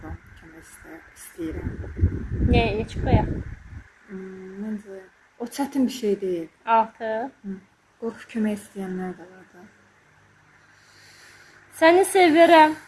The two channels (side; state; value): both; identical; correlation 1.00